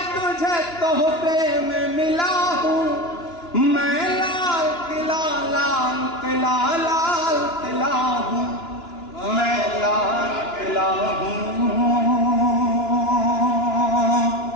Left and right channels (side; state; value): right; late; 2.9 ms